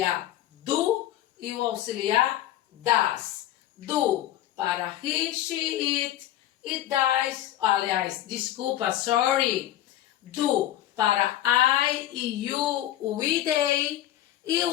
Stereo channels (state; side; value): quieter; right; 13.2 dB